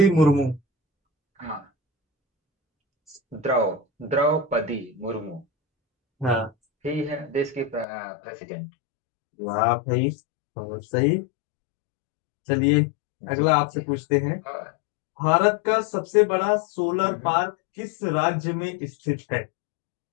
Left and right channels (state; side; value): drops out; right; at 7.9 s